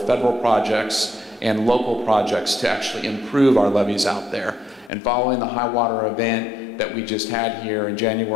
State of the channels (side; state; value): right; drops out; at 4.9 s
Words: projects and local projects to actually improve our levees out there. And following the high water event that we just had here in